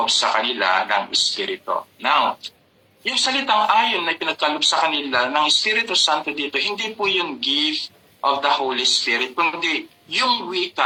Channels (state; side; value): identical; both; correlation 1.00